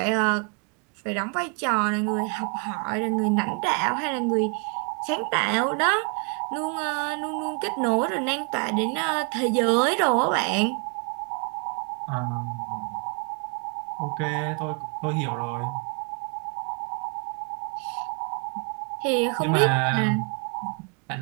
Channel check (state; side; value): quieter; left; 36.7 dB